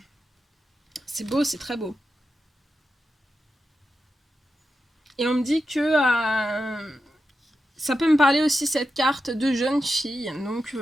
C'est beau, c'est très beau. Et on me dit que ça peut me parler aussi, cette carte, de jeune fille. Donc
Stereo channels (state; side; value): normal; both; correlation 0.89